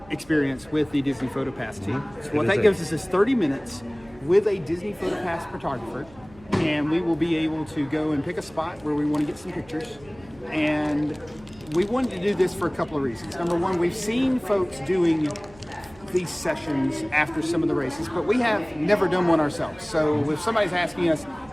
experience with the Disney PhotoPass team. So what that gives us is 30 minutes with a Disney PhotoPass photographer, and we will be able to go and pick a spot where we want to get some pictures. And we wanted to do this for a couple of reasons. Number one, we've seen folks doing these sessions after some of the races, but we have never done one ourselves. So if somebody's asking us,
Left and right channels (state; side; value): noise; right; hum, 24 dB below the sound